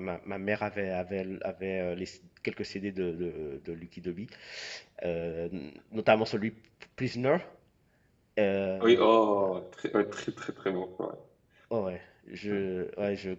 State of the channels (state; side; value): identical; both; correlation 1.00